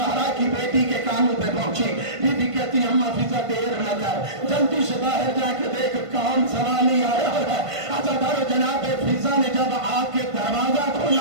کی بیٹی کے کانوں پہ پہنچی، بی بی کہتی اماں فضہ دیر نہ کر، جلدی سے باہر جا کے دیکھ کون سوالی آیا ہے۔ جناب فضہ نے جب آ کے دروازہ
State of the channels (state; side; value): late; left; 1.5 ms